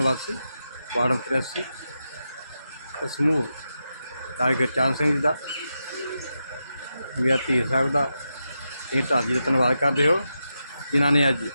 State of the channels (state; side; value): inverted; both; correlation -0.88